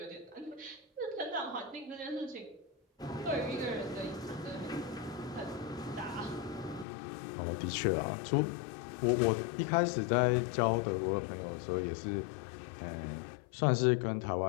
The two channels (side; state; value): right; drops out; at 6.9 s